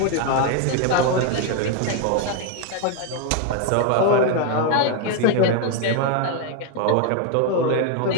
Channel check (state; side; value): different; both; correlation 0.01